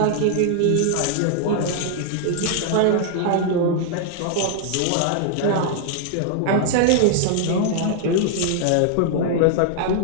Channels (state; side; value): different; both; correlation 0.00